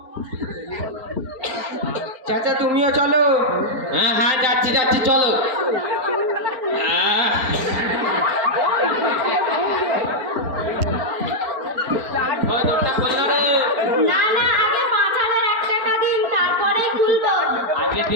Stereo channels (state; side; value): late; left; 4.4 ms